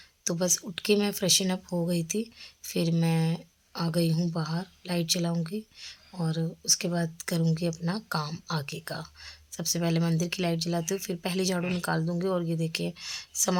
तो बस उठ के मैं फ्रेशन अप हो गई थी। फिर मैं आ गई हूँ बाहर, लाइट जलाऊंगी और उसके बाद करूँगी अपना काम आगे का। सबसे पहले मंदिर की लाइट जलाती हूँ, फिर पहले झाड़ू निकाल दूँगी। और ये देखिए,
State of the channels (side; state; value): both; identical; correlation 1.00